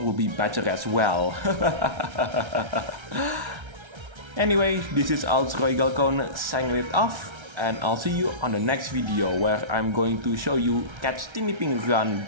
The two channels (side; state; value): left; late; 1.3 ms